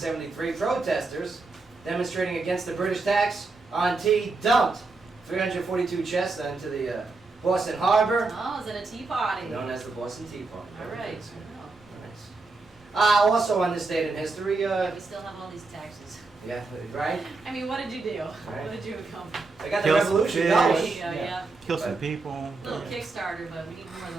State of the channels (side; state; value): left; quieter; 3.7 dB